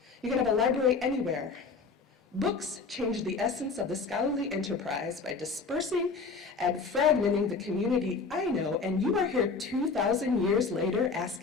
You can have a library anywhere. Books change the essence of the scholarly enterprise by dispersing and fragmenting the community I know, and you are here 2,000 years later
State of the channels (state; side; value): quieter; right; 4.6 dB